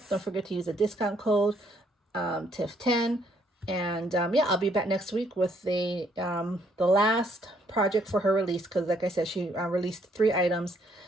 Don't forget to use the discount code TIFF10. And yeah, I'll be back next week with the last project for her release, because like I said, she released 3 items.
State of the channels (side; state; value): both; normal; correlation 0.69